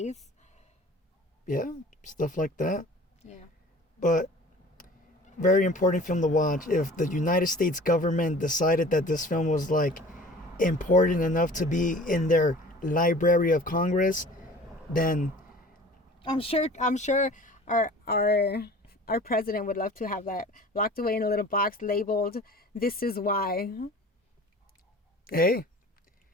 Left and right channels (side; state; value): both; normal; correlation 0.44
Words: Yeah, stuff like that. Yeah. But very important film to watch. If the United States government decided that this film was like important enough to be in their Library of Congress, then I'm sure our president would love to have that locked away in a little box labeled "This is why." Hey,